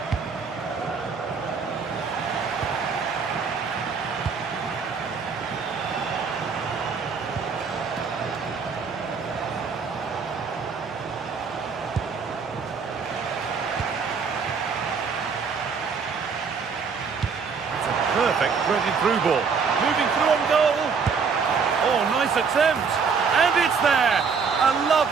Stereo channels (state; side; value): quieter; left; 5.5 dB